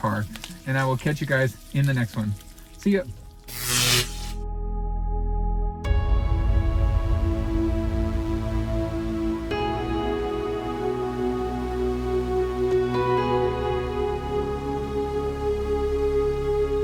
And I will catch you guys in the next one. See ya.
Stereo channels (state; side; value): identical; both; correlation 1.00